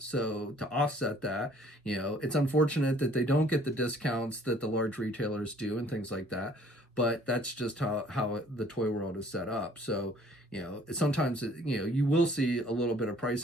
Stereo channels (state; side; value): normal; both; correlation 0.57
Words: So to offset that, it's unfortunate that they don't get the discounts that the large retailers do and things like that. But that's just how the toy world is set up. So, sometimes, you will see a little bit of